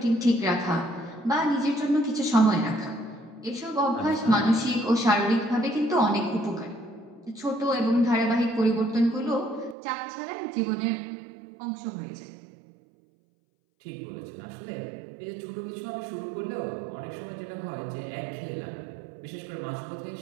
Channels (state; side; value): drops out; left; at 9.8 s